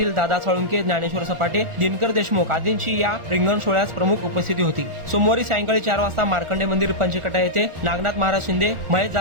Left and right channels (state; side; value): late; left; 1.4 ms